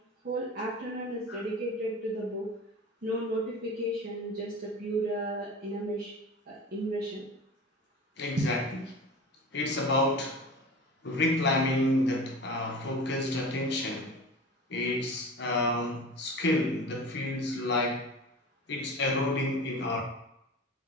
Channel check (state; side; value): normal; both; correlation 0.35